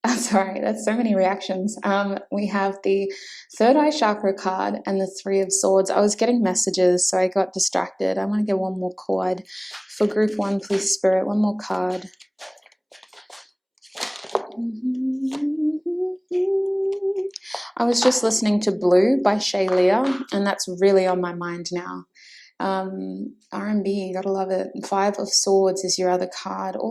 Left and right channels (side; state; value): both; identical; correlation 1.00